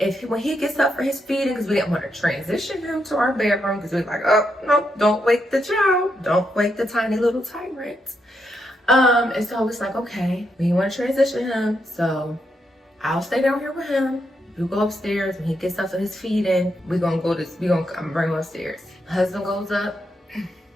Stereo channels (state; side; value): normal; both; correlation 0.81